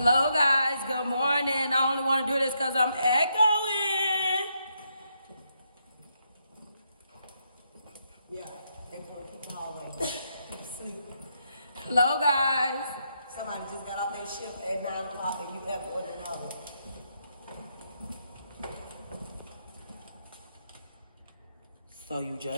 guys. Good morning. I only want to do this because I'm echoing. Yeah, they put the hallway. Keep sleeping. Hello, guys. Somebody just got off their shift at 9 o'clock and you left for an hour. So you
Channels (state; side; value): inverted; both; correlation -0.79